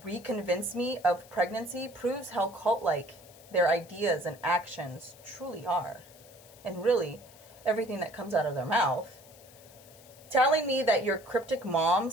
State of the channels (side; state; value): left; noise; hiss, 23 dB below the sound